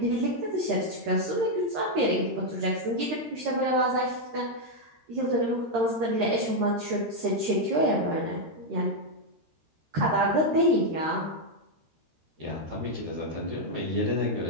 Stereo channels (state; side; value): late; left; 13 ms